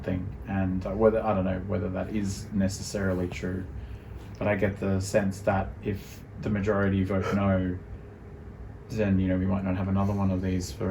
And I don't know whether that is necessarily true, but I get the sense that if the majority vote no, then we might not have another one of these for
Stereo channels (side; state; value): both; identical; correlation 1.00